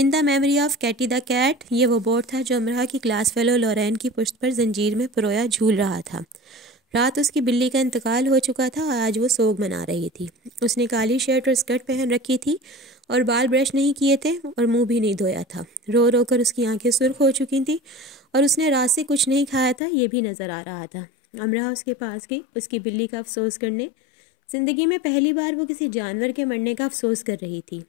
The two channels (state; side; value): drops out; right; at 19.8 s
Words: the memory of Katie the cat, یہ وہ بورڈ تھا جو امرہ کی کلاس فیلو لورین کی پشت پر زنجیر میں پرویا جھول رہا تھا۔ رات اس کی بلی کا انتقال ہو چکا تھا اور آج وہ سوگ منا رہی تھی۔ اس نے کالی شرٹ اور اسکرٹ پہن رکھی تھی اور بال برش نہیں کیے تھے اور منہ بھی نہیں دھویا تھا۔ رو رو کر اس کی آنکھیں سرخ ہو چکی تھیں اور اس نے رات سے کچھ نہیں کھایا تھا، یہ بھی نظر آ رہا تھا۔ امرہ اس کے پاس گئی، اس کی بلی کا افسوس کرنے۔ زندگی میں پہلی بار وہ کسی جانور کے مرنے کا افسوس کر رہی تھی۔